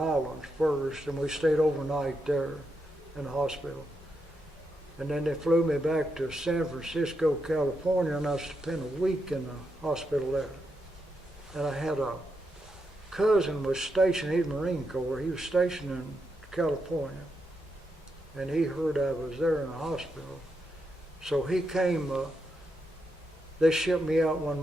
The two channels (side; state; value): both; normal; correlation 0.83